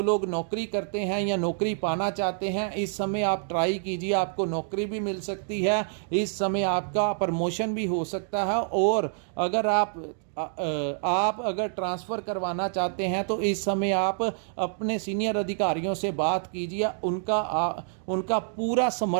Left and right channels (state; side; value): silent; left; digital silence